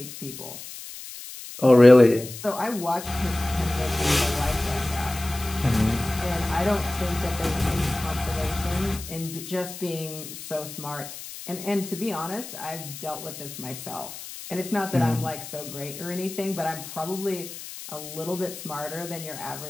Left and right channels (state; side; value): noise; left; hiss, 12 dB below the sound